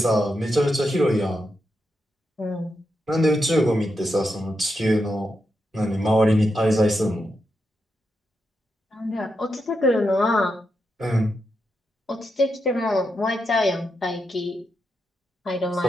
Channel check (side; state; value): both; normal; correlation 0.85